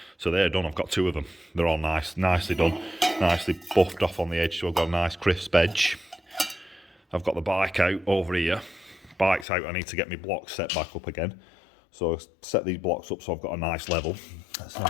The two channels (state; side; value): drops out; right; at 9.5 s